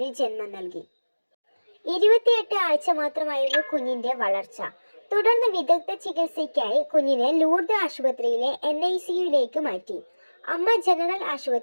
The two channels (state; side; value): inverted; both; correlation -1.00